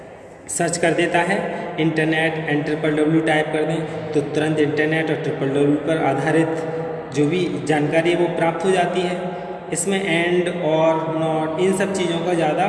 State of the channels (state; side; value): identical; both; correlation 1.00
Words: सर्च कर देता है। इंटरनेट एंड www टाइप कर दें तो तुरंत इंटरनेट और www पर आधारित जो भी जानकारी है वो प्राप्त हो जाती है। इसमें एंड और नॉट इन सब चीज़ों का ज़्यादा